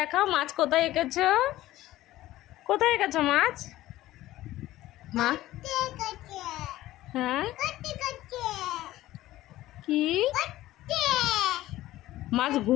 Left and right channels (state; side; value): quieter; right; 15.7 dB